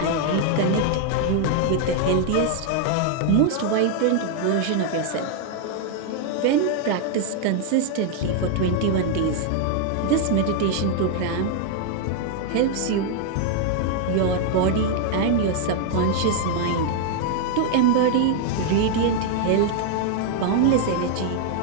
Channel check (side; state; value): both; different; correlation 0.00